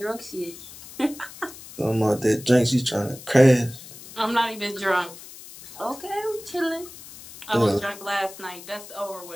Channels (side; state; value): left; noise; hiss, 16 dB below the sound